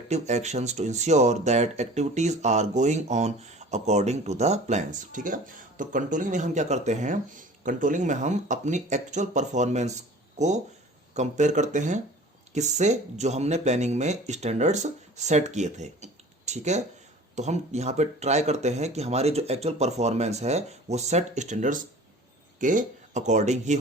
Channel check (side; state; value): both; normal; correlation 0.43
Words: actions to ensure that activities are going on according to the plans. ठीक है, तो controlling में हम क्या करते हैं, controlling में हम अपनी एक्चुअल परफॉर्मेंस को कंपेयर करते हैं किससे, जो हमने प्लानिंग में स्टैंडर्ड्स सेट किए थे. ठीक है, तो हम यहाँ पे ट्राई करते हैं कि हमारी जो एक्चुअल परफॉर्मेंस है वो सेट स्टैंडर्ड्स के अकॉर्डिंग ही